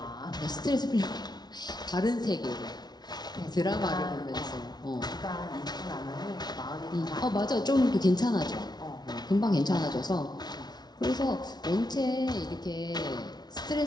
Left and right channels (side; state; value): right; late; 0.19 ms